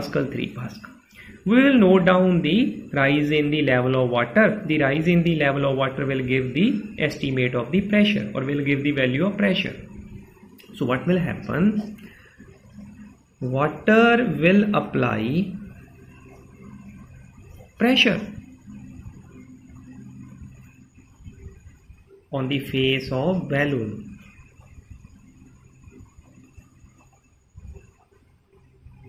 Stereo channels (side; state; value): both; identical; correlation 1.00